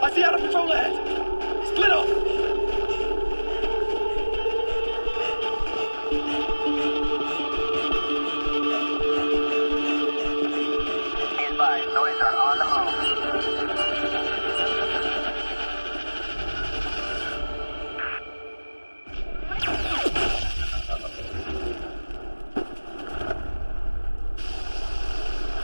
I see Outer Patrol ahead! Split off! Be advised, noids are on the move.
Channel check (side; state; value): both; inverted; correlation -1.00